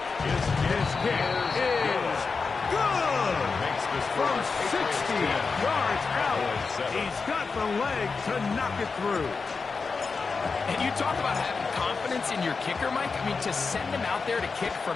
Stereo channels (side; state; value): right; quieter; 4.7 dB